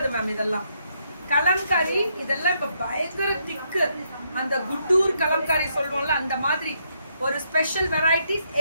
மேம். இதெல்லாம் கலம்காரி. இதெல்லாம் இப்ப பயங்கர திக்கு. அந்த குட்டூர் கலம்காரி சொல்லுவோம்ல, அந்த மாதிரி ஒரு ஸ்பெஷல் வெரைட்டிஸ்.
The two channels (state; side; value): inverted; both; correlation -0.76